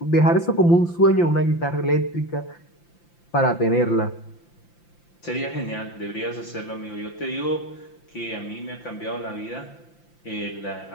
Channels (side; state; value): right; late; 5.8 ms